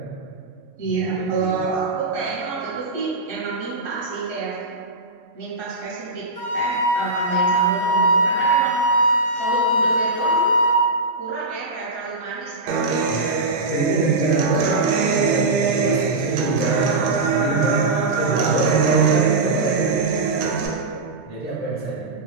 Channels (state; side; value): quieter; left; 3.1 dB